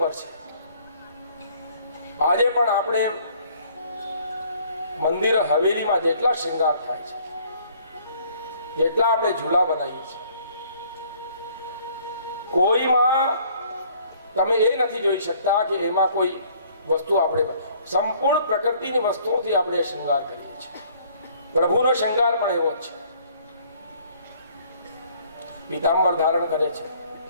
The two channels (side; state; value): both; inverted; correlation -0.59